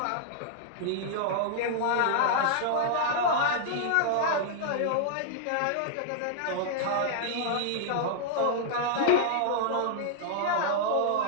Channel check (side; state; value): both; different; correlation -0.01